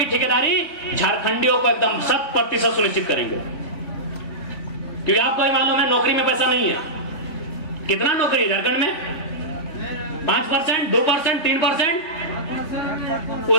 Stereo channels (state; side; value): late; right; 3.3 ms